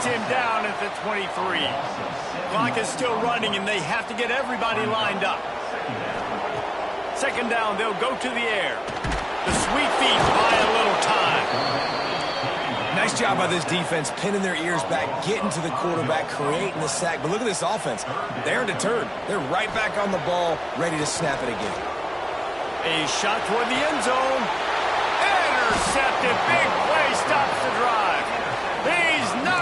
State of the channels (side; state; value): both; identical; correlation 1.00